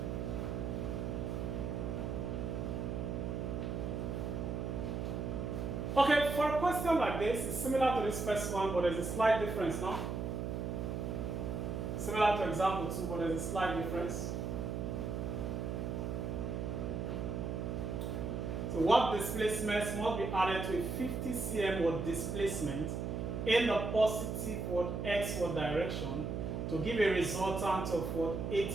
Okay, for a question like this, it's similar to this first one, but there's a slight difference now. Similar to example 2, but there's a slight difference. So what displacements must be added to a 50 cm displacement in the positive x direction to give a resultant of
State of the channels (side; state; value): right; noise; hum, 3 dB below the sound